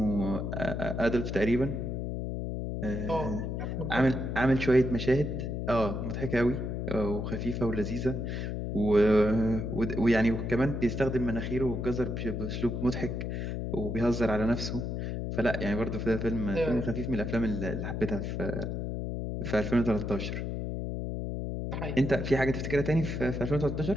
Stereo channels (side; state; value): left; noise; hum, 3 dB below the sound